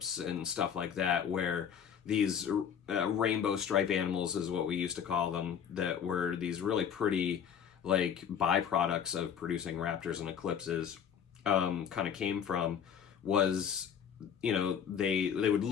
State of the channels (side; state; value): right; quieter; 8.0 dB